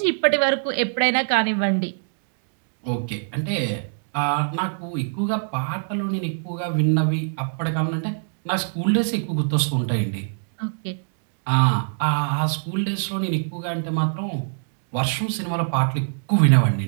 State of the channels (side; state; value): left; silent; digital silence